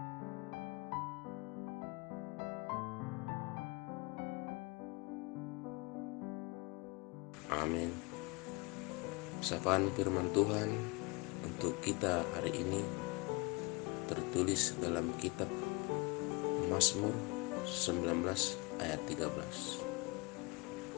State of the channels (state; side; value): quieter; right; 26.8 dB